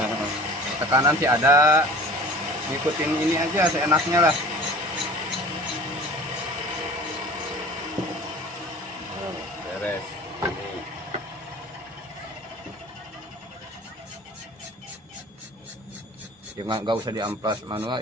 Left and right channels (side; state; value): both; normal; correlation 0.42